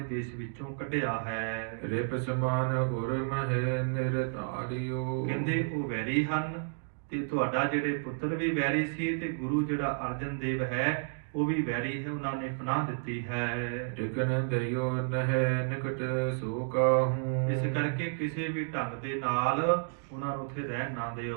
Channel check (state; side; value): silent; left; digital silence